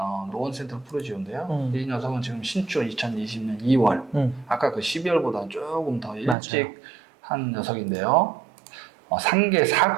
노원 센트럴 푸르지오인데요. 이 녀석은 지금 신축 2020년 2월 아까 그 12월보다 조금 더 일찍 맞아요. 한 녀석인데요. 상계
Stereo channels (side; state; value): left; drops out; at 6.4 s